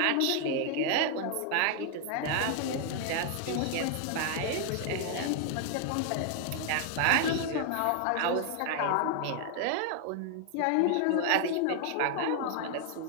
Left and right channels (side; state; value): both; different; correlation 0.00